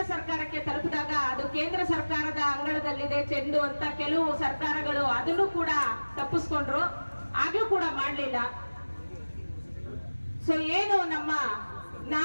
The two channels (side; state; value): both; inverted; correlation -1.00